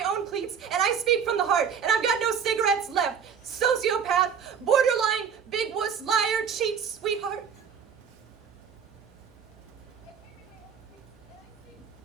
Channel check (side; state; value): left; quieter; 7.1 dB